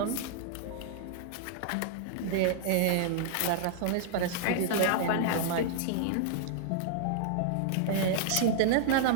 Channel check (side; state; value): both; different; correlation -0.01